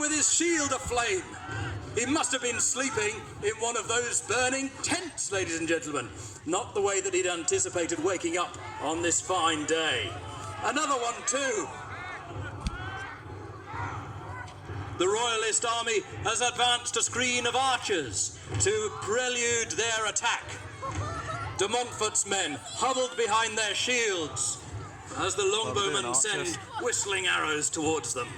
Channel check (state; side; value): identical; both; correlation 1.00